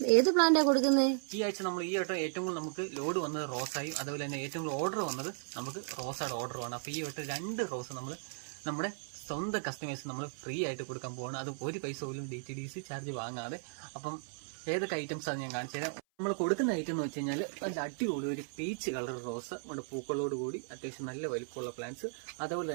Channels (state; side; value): silent; left; 54 dB below the other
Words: ഏത് പ്ലാന്റാ കൊടുക്കുന്നത്? ഈ ആഴ്ച നമ്മൾ ഈ വട്ടം ഏറ്റവും കൂടുതൽ നമുക്ക് ലോഡ് വന്നത് റോസായും, അതുപോലെ തന്നെ ഏറ്റവും കൂടുതൽ ഓർഡർ വന്നത് നമുക്ക് റോസയുടെ ഓർഡറുമാണ്. അപ്പോൾ ഈ വട്ടം 2 റോസ് നമ്മൾ നമ്മുടെ സ്വന്തം കസ്റ്റമേഴ്സ് നമ്മൾ ഫ്രീ ആയിട്ട് കൊടുക്കാൻ പോവാണ്. അത് ഒരു പൈസ പോലും DTDC ചാർജ് വാങ്ങാതെ. അപ്പം ഏതൊക്കെ ഐറ്റംസ് ആണ് ഞാൻ കാണിച്ചു തരാം. നമ്മൾ കൊടുക്കുന്ന ഐറ്റം എന്ന് വെച്ച് കഴിഞ്ഞാൽ നല്ല അടിപൊളി ഒരു പീച്ച് കളർ റോസ്, നമ്മുടെ പൂക്കളോട് കൂടി അത്യാവശ്യം നല്ല വലിപ്പമുള്ള പ്ലാന്റ്സ്. അതുപോലെ